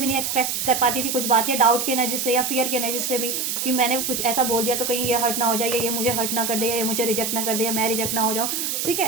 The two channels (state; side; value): noise; right; hiss, 1 dB below the sound